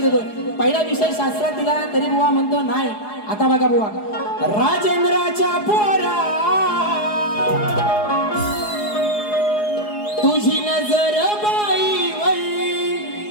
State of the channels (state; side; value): late; right; 4.8 ms